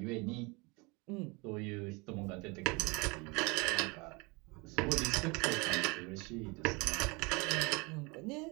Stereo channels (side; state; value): left; quieter; 27.6 dB